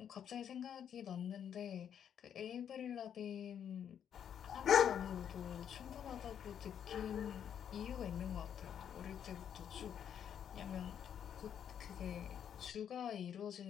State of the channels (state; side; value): quieter; right; 8.8 dB